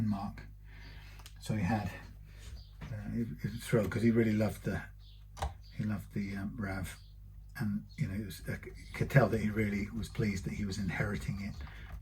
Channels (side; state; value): both; identical; correlation 1.00